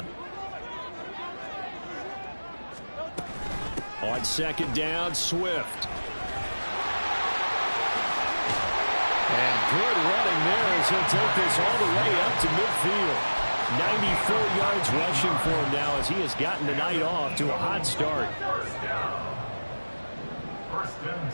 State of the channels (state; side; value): inverted; both; correlation -1.00